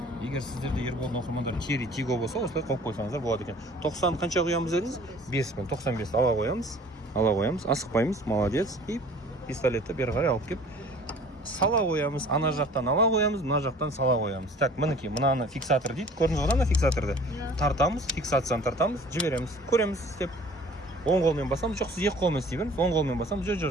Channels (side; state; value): both; normal; correlation 0.49